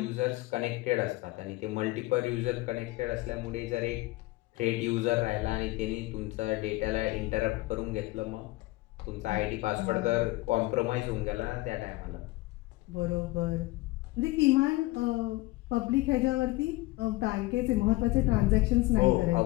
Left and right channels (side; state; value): right; quieter; 20.2 dB